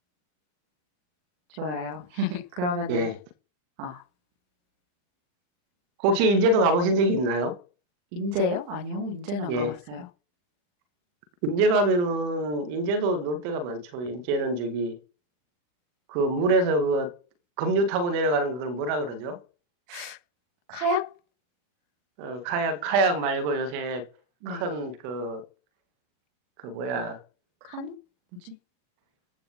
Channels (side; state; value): left; late; 39 ms